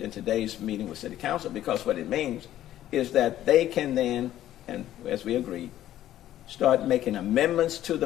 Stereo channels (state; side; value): quieter; right; 12.7 dB